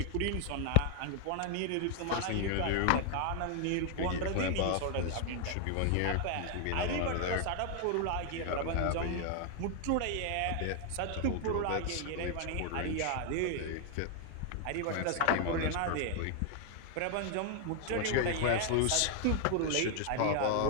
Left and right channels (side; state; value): both; different; correlation 0.00